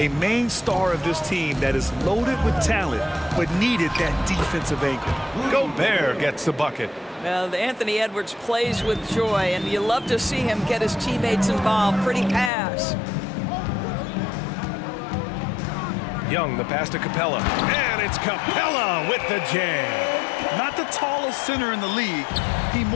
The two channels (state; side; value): drops out; right; at 12.5 s